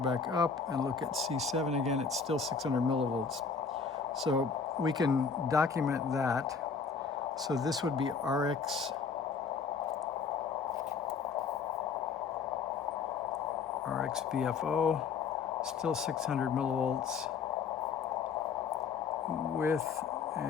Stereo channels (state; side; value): quieter; right; 5.5 dB